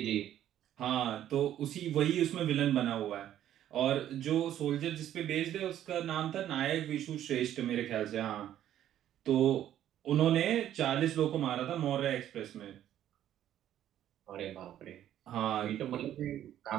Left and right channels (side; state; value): left; quieter; 11.5 dB